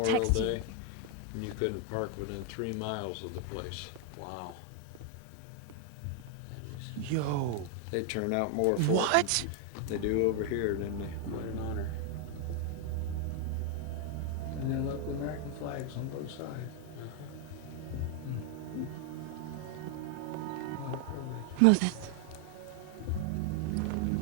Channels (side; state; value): both; different; correlation 0.01